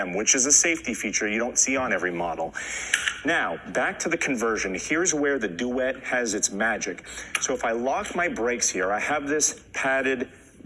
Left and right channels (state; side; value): identical; both; correlation 1.00